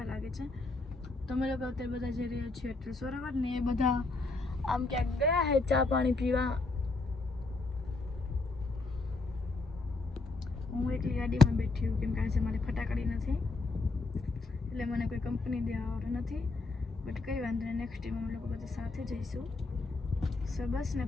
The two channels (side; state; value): right; quieter; 3.5 dB